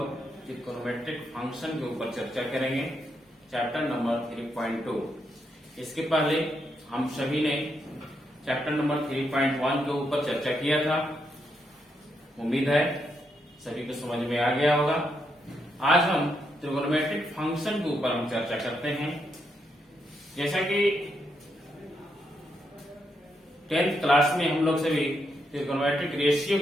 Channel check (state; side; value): normal; both; correlation 0.80